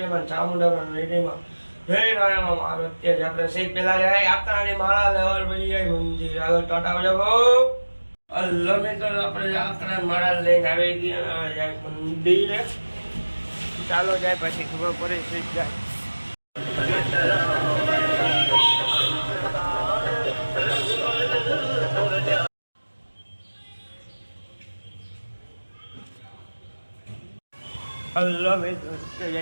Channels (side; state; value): both; inverted; correlation -1.00